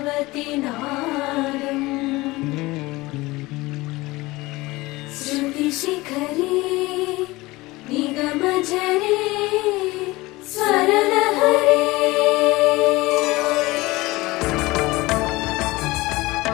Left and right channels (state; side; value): quieter; right; 20.8 dB